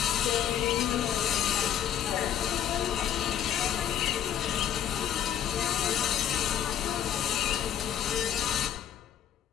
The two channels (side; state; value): right; quieter; 9.9 dB